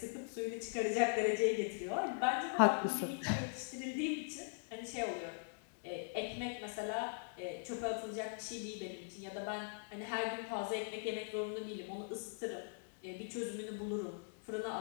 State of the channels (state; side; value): silent; right; digital silence